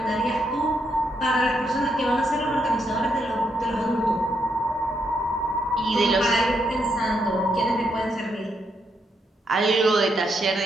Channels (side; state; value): both; normal; correlation 0.79